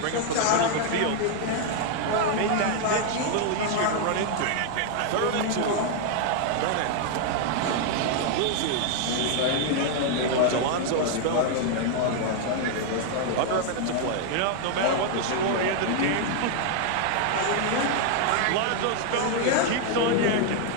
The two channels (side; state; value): both; different; correlation 0.00